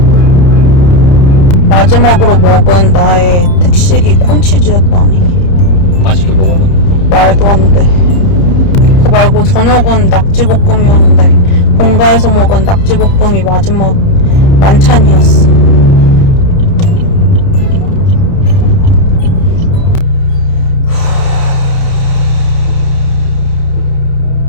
마지막으로 먹은 나의 특식이 콘치즈였다니. 맛있게 먹었나? 말도 안 돼. 그거 말고 저녁은 낙지볶음이었는데 본가에서 먹은 낙지볶음이 마지막 만찬이었어.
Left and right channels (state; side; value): late; right; 30 ms